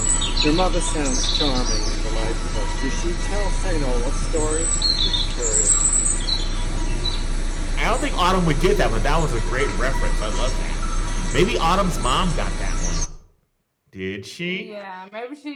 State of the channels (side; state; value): both; identical; correlation 1.00